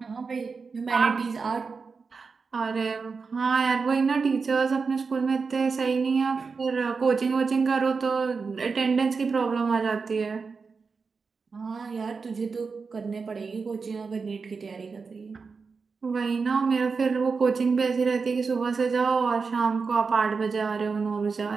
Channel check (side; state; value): left; quieter; 4.9 dB